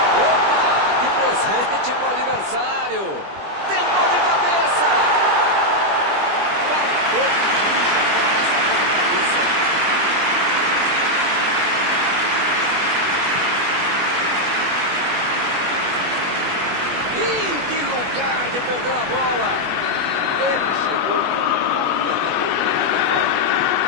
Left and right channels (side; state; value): left; late; 20 ms